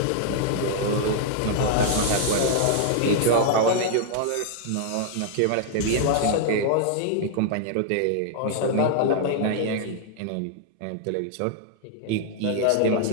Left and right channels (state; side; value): different; both; correlation -0.01